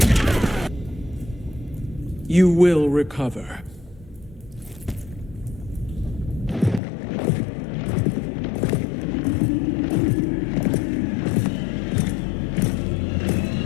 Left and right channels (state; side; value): drops out; right; at 6.8 s